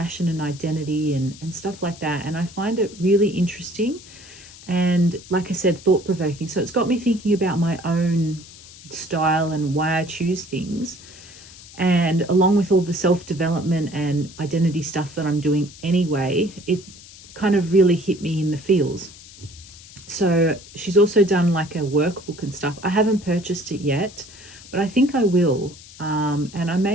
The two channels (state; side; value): noise; left; hiss, 19 dB below the sound